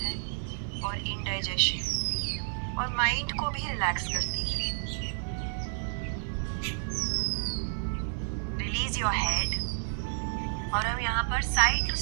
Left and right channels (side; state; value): left; silent; digital silence